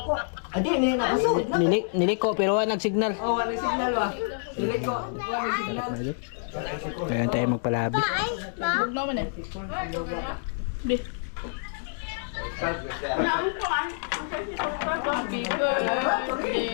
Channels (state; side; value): silent; right; 60 dB below the other